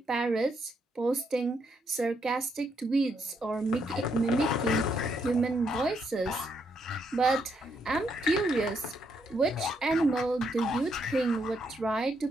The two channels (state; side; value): normal; both; correlation 0.76